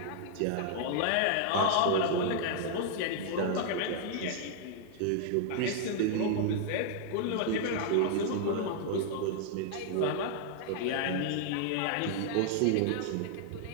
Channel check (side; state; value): both; different; correlation 0.00